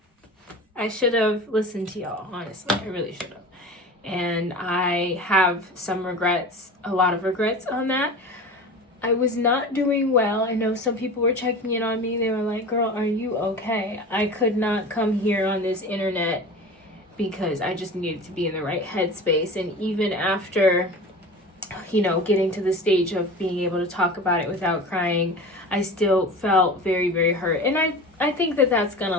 should have listened to y'all, honestly. I really should have. And I have some regrets, a lot of regrets on that. I was not doing well. I know some people were checking in on me. They were like, girl, are you okay? I could not come here on this internet because I just needed to be in the right headspace. And even after, getting to the stage of being able to talk about it without crying, I still felt very, very hurt. And I think that that's going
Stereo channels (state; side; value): normal; both; correlation 0.34